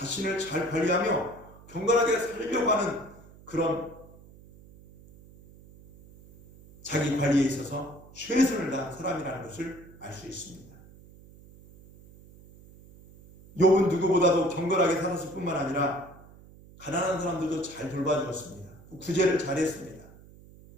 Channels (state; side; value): noise; right; hum, 22 dB below the sound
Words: 잘 관리하며 경건하게 살려고 하는 그런 자기 관리에 있어서 최선을 다한 사람이라는 것을 알 수 있습니다. 욥은 누구보다도 경건하게 살았을 뿐만 아니라 가난한 사람들도 잘 돌봐주었습니다. 구제를 잘했습니다.